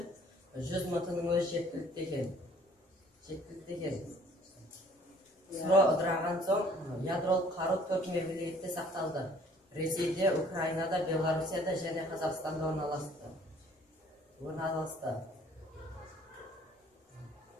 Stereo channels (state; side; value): normal; both; correlation 0.56